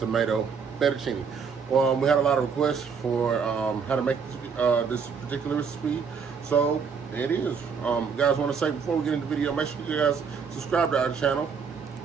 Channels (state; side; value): quieter; left; 6.0 dB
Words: fettuccine. We had a lot of requests for how to make this particular recipe, so it is. Guys, want to say before we get into the video, make sure you guys subscribe to our channel.